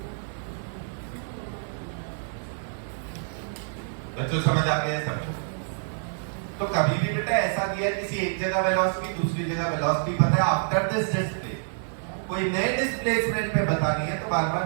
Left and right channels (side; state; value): left; silent; 57 dB below the other